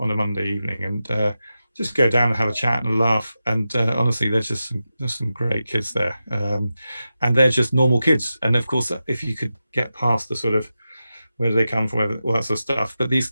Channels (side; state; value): both; inverted; correlation -0.91